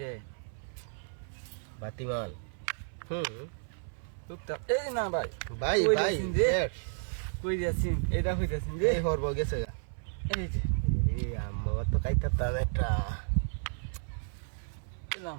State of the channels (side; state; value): left; silent; 56 dB below the other